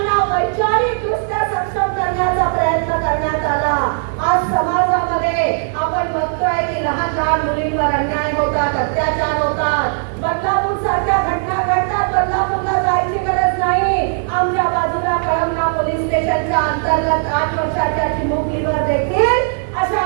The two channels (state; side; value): silent; left; digital silence